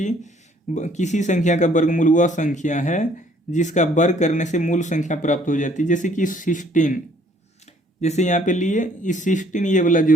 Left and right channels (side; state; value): both; normal; correlation 0.61